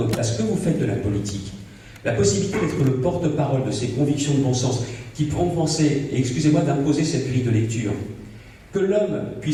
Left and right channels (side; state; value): both; identical; correlation 1.00